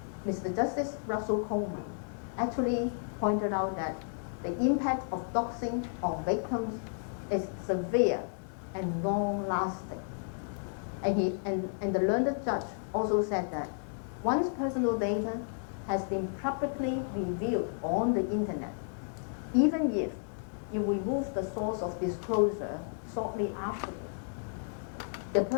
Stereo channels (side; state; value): right; silent; digital silence